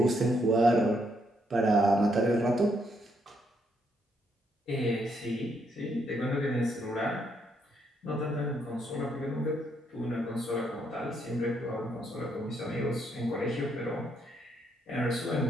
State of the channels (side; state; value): both; normal; correlation 0.74